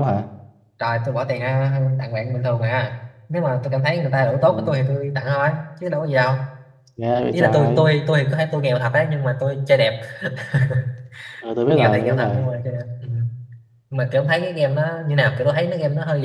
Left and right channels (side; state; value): both; identical; correlation 1.00